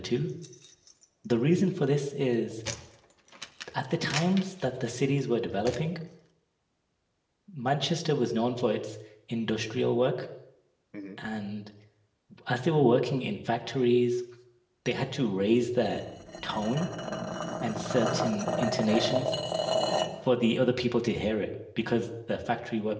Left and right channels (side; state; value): both; identical; correlation 1.00